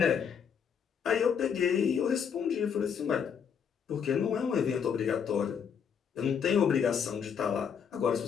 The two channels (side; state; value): right; quieter; 7.3 dB